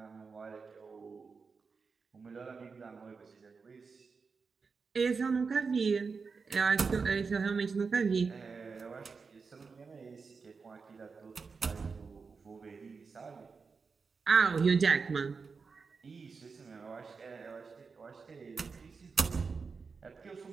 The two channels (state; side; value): quieter; left; 5.0 dB